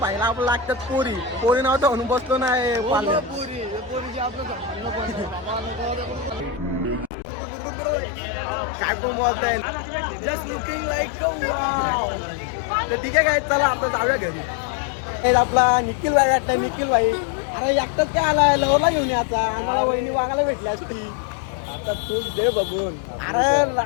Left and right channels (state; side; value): drops out; right; at 7.1 s